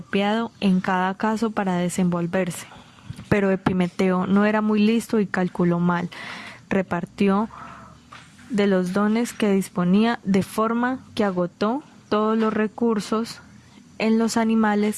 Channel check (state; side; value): identical; both; correlation 1.00